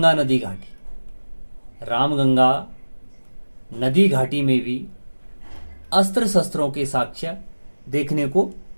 नदी घाटी, रामगंगा नदी घाटी में भी अस्त्र शस्त्रों के साक्ष्य देखने को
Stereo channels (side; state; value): both; inverted; correlation -1.00